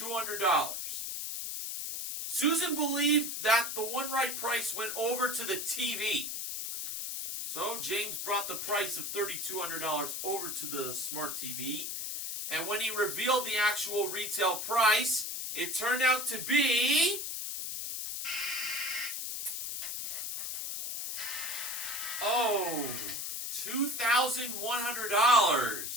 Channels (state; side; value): noise; left; hiss, 4 dB below the sound